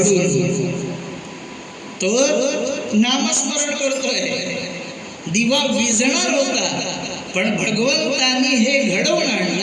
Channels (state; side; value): identical; both; correlation 1.00